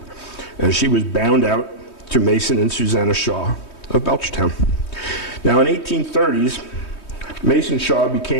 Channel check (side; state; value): right; late; 3.2 ms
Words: as she was bound out to Mason and Susanna Shaw of Belchertown. Now, in 1830s, Mason Shaw